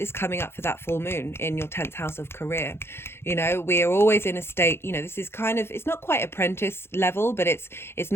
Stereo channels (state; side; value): late; right; 0.12 ms